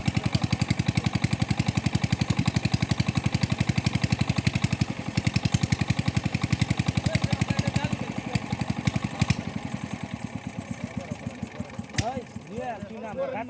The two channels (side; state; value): both; identical; correlation 1.00